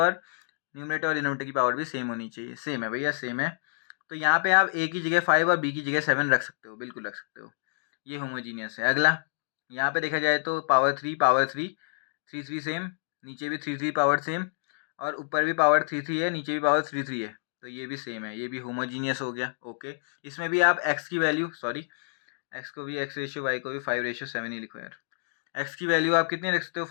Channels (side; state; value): right; silent; digital silence